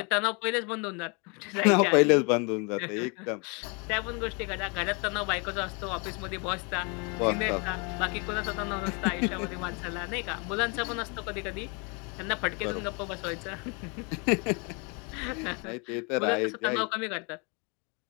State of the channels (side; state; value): right; quieter; 32.8 dB